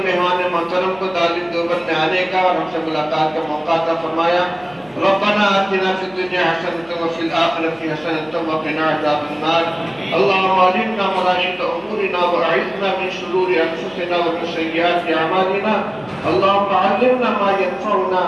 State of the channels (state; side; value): noise; right; hum, 29 dB below the sound